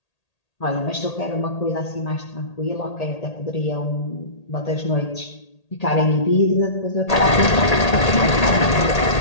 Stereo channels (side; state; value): right; late; 1.8 ms